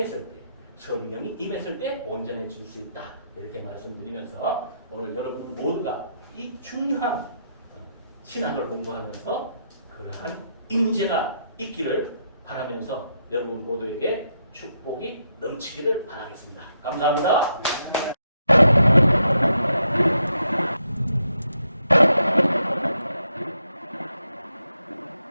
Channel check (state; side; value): inverted; both; correlation -0.79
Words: 때, 성령이 임했을 때 온전해질 수 있다. 이렇게 말씀드리면서 오늘 여러분 모두가 이 중요한 신앙을 공부하면서 그러한 임재가 있기를 바라면서 여러분 모두에게 축복이 넘치기를 바라겠습니다. 감사합니다.